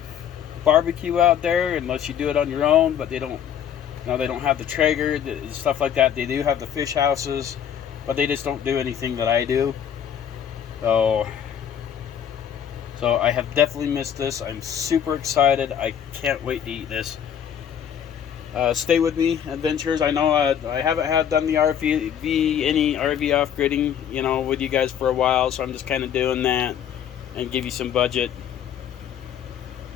barbecue out there unless you do it on your own, but they don't have the Traeger, stuff like that. They do have the fish houses, but they just don't do anything that I do. So I have definitely missed this. I'm super excited. I can't wait to eat this. Stay with me, adventurers. I know I haven't done the any RV off-gridding, with you guys for a while, so I'm just kind of doing that and give you some budget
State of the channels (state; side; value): quieter; right; 9.0 dB